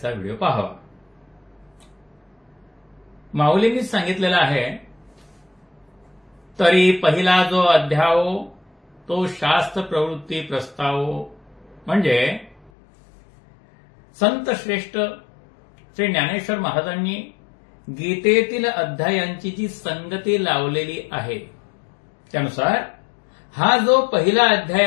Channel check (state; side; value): drops out; right; at 12.7 s